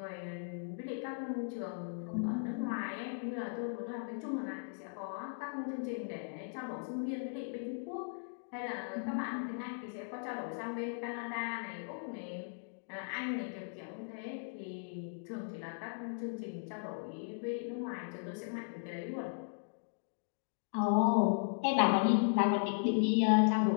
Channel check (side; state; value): right; silent; digital silence